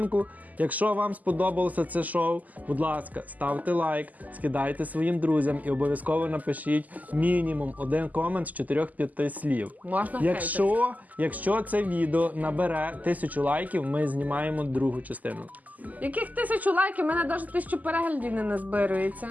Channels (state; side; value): late; left; 0.079 ms